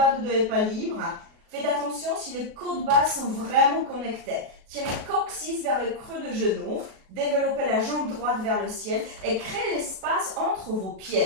du dos n'est pas libre, faites attention si les côtes basses sont vraiment connectées. Tirez coccyx vers le creux de genou. Développez la jambe droite vers le ciel et créez l'espace entre vos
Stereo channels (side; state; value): left; late; 37 ms